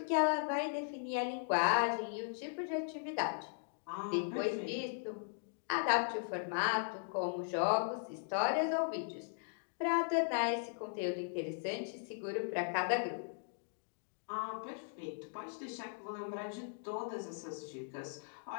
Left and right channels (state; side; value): silent; right; digital silence